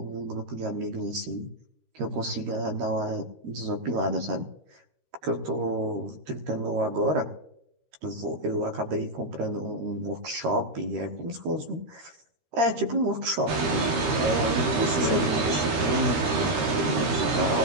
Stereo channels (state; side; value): late; left; 13 ms